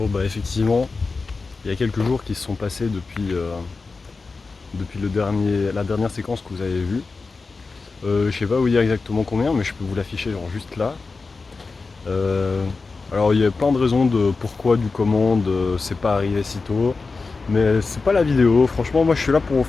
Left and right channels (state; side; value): quieter; right; 4.1 dB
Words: bah effectivement, il y a quelques jours qui se sont passés depuis la dernière séquence que vous avez vue. Je sais pas vous dire exactement combien, mais je peux vous l'afficher genre juste là. Alors il y a plein de raisons de pourquoi, du comment, c'est pas arrivé si tôt. Mais c'est pas la vidéo. Franchement, moi je suis là pour vous